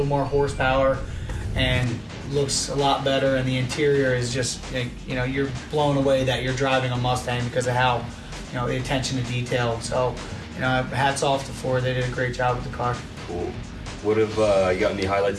more horsepower, and looks a lot better. And the interior is just, you're blown away that you're driving a Mustang because of how, the attention to detail. So, hats off to Ford. They did a great job with the car. Cool. What have you got any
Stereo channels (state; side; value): identical; both; correlation 1.00